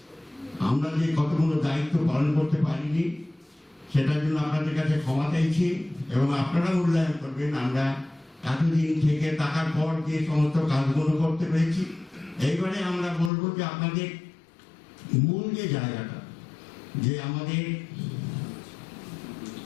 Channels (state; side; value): drops out; right; at 13.3 s